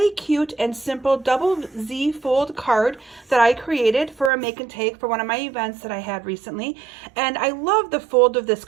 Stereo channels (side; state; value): left; drops out; at 4.3 s